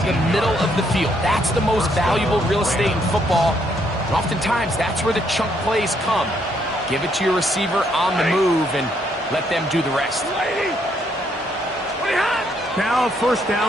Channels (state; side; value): normal; both; correlation 0.72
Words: the middle of the field. That's the most valuable real estate in football. And oftentimes, that's where the chunk plays come. Give it to your receiver on the move and let them do the rest. Now a 1st